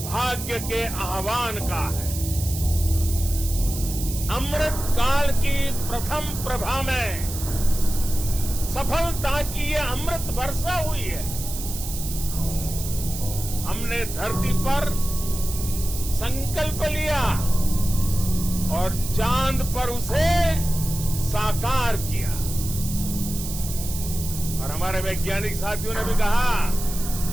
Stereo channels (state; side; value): noise; right; hiss, 8 dB below the sound